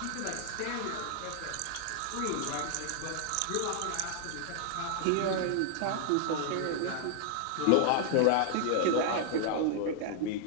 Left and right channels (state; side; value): different; both; correlation -0.01